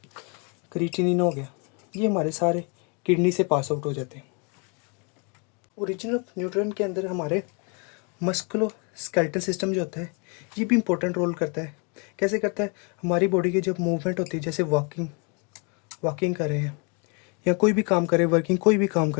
क्रिएटिनिन हो गया, ये हमारे सारे किडनी से पास आउट हो जाते हैं। ओरिजिन ऑफ न्यूट्रिएंट के अंदर हमारे मस्कुलो स्केलेटल सिस्टम जो होता है, ये भी इम्पोर्टेंट रोल करता है। कैसे करता है, हमारी बॉडी की जब मूवमेंट होती है, जैसे वॉकिंग कर रहे हैं या कोई भी काम कर रहे हैं, वर्किंग कोई भी काम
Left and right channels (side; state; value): right; quieter; 34.6 dB